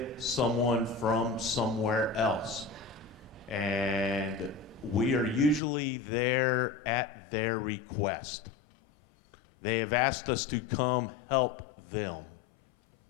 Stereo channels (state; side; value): drops out; right; at 5.6 s